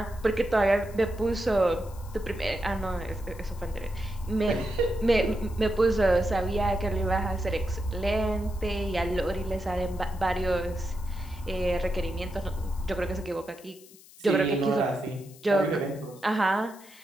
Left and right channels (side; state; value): left; noise; hiss, 22 dB below the sound